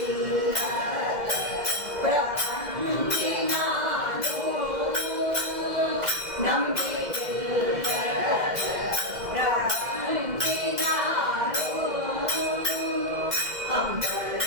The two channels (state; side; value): late; left; 2.1 ms